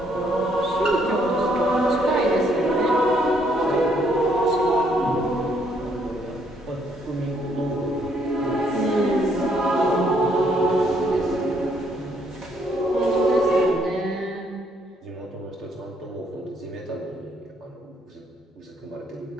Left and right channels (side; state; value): both; normal; correlation 0.69